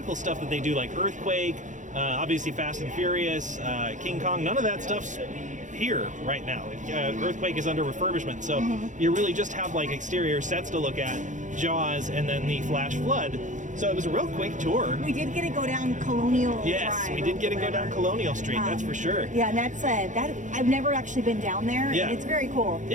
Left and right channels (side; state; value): left; late; 0.36 ms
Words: stuff that they do, like Earthquake, obviously Fast and Furious, King Kong, none of that stuff's here right now. Earthquake is under refurbishment, so you really just have exterior sets to look at, Jaws, and then the Flash Flood. So it was a real quick tour. We did get to go down Colonial Drive. We did get to go down Colonial Street, that's for sure. Yeah, and that's that. I've never actually been down there. Yeah. And it's very cool.